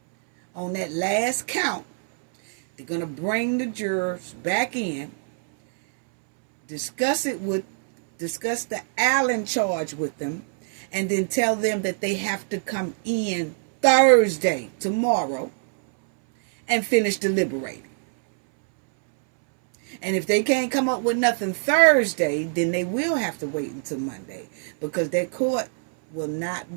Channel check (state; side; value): silent; left; 63 dB below the other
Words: on that last count, they're going to bring the jurors back in, discuss the Allen charge with them, and then tell them that they have to come in Thursday, tomorrow, and finish deliberating. And if they can't come up with nothing Thursday, then they will have to wait until Monday, because their court will not